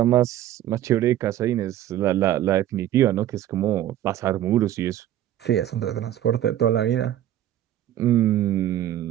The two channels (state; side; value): quieter; left; 12.4 dB